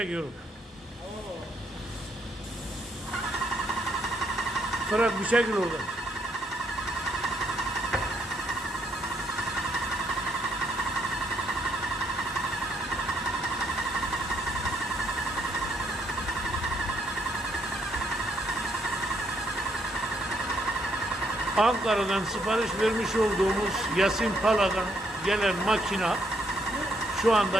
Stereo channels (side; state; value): both; normal; correlation 0.72